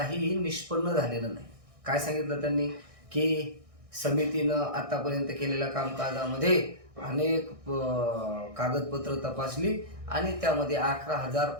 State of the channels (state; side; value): late; left; 1.6 ms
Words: निष्पन्न झालेलं नाही. काय सांगितलं त्यांनी की समितीनं आतापर्यंत केलेल्या कामकाजामध्ये अनेक कागदपत्र तपासली आणि त्यामध्ये